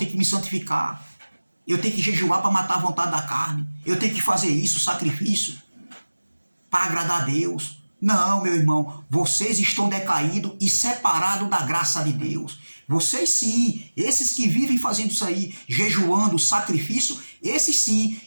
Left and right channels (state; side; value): inverted; both; correlation -1.00